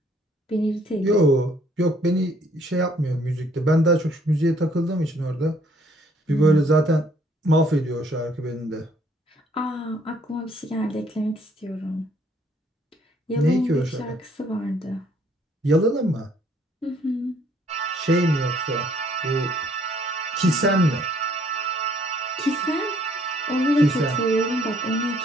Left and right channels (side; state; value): both; normal; correlation 0.64